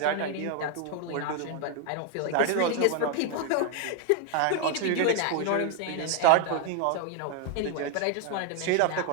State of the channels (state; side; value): different; both; correlation 0.00